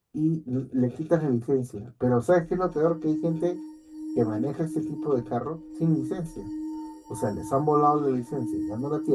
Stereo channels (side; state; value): both; identical; correlation 1.00